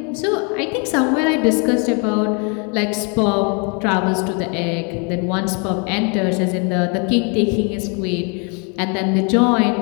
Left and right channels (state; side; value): quieter; right; 35.2 dB